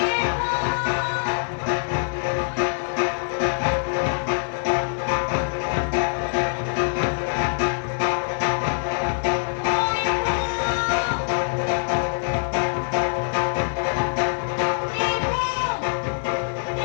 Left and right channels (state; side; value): silent; right; 63 dB below the other